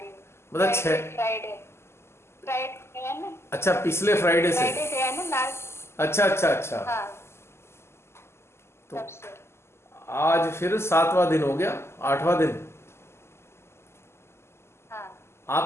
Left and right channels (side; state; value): right; late; 0.12 ms